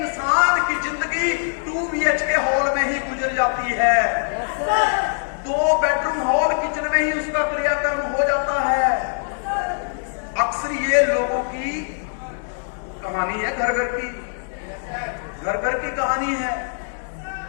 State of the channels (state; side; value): silent; right; digital silence